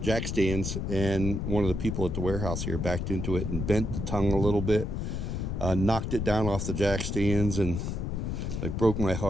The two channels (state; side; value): noise; left; rumble, 2 dB below the sound